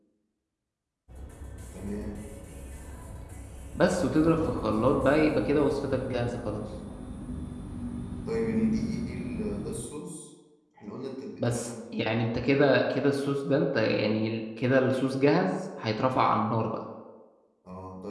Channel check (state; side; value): identical; both; correlation 1.00